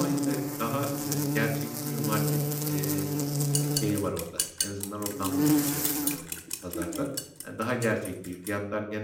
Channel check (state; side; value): identical; both; correlation 1.00